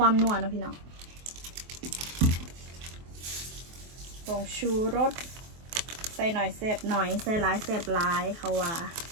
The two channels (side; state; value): left; late; 24 ms